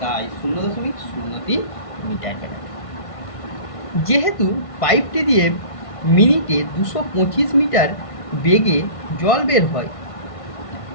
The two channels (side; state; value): right; late; 1.5 ms